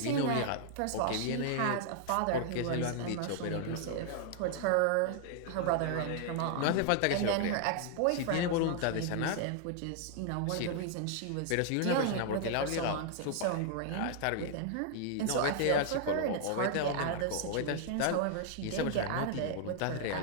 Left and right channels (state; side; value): different; both; correlation -0.01